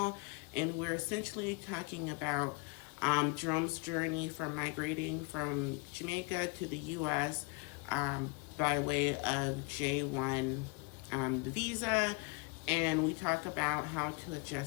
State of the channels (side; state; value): right; quieter; 33.0 dB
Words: And we're essentially talking about Jerome's journey from migrating from Jamaica to the U.S. By way of J1 visa. And we talk about how to